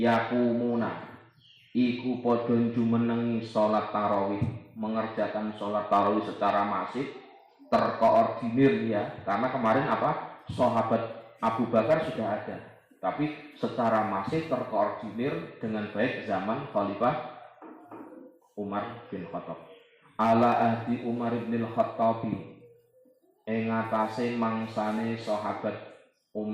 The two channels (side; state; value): both; identical; correlation 1.00